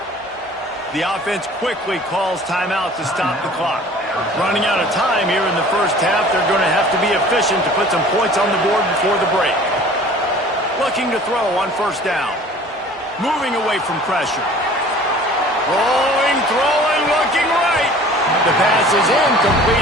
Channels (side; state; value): both; normal; correlation 0.47